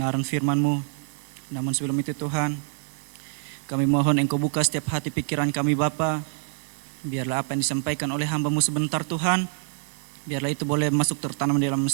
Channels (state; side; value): silent; left; digital silence